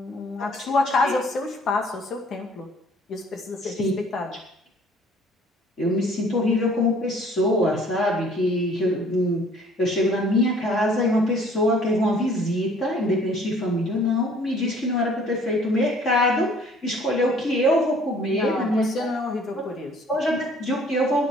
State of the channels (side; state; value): both; normal; correlation 0.56